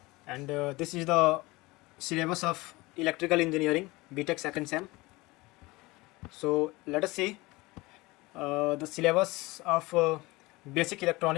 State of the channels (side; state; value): right; quieter; 21.9 dB